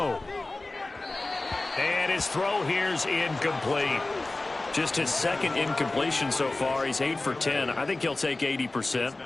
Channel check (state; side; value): quieter; right; 3.0 dB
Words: And his throw here's incomplete. Just his 2nd incompletion so far. He's 8 for 10. I think he'll take